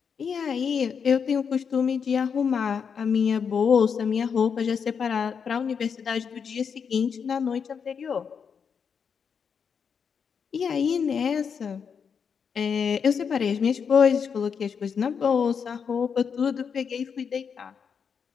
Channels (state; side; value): quieter; right; 6.6 dB